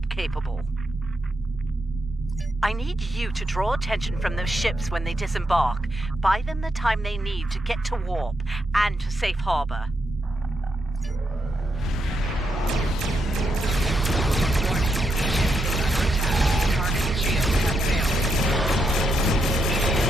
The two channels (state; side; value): normal; both; correlation 0.81